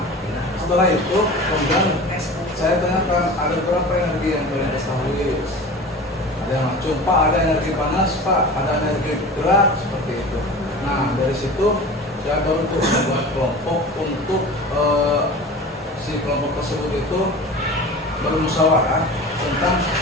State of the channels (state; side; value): normal; both; correlation 0.36